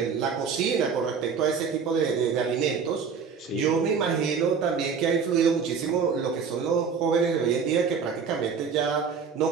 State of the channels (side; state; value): left; quieter; 6.0 dB